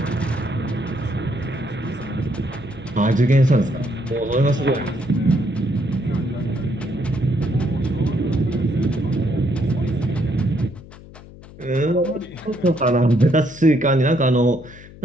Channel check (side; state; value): left; noise; hum, 19 dB below the sound